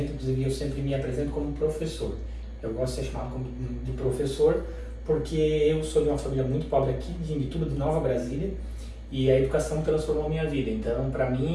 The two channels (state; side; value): identical; both; correlation 1.00